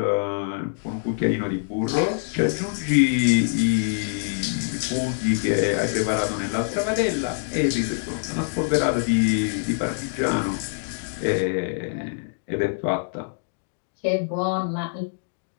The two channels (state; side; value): silent; right; digital silence